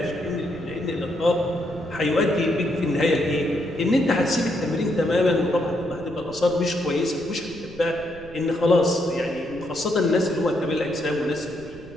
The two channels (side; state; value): right; noise; rumble, 19 dB below the sound